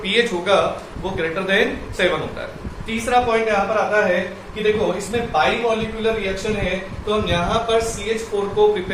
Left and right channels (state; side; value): identical; both; correlation 1.00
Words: pH होगा वो ग्रेटर देन 7 होता है। तीसरा पॉइंट यहाँ पर आता है कि देखो इसमें बाई मॉलिक्यूलर रिएक्शन है, तो हम यहाँ पर CH4 को